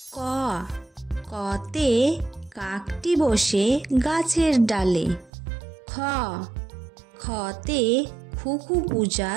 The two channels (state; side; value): drops out; left; at 5.3 s